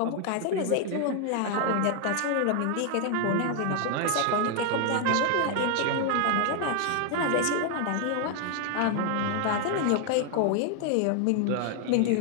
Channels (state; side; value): different; both; correlation 0.00